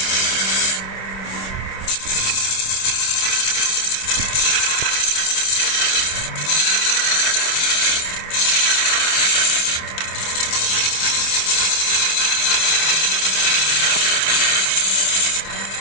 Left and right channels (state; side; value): late; right; 26 ms